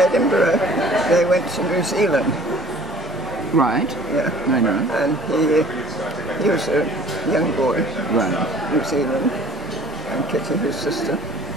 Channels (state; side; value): normal; both; correlation 0.50